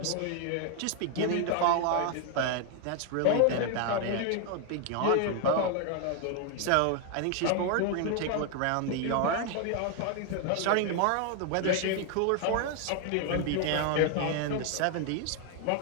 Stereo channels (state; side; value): different; both; correlation 0.00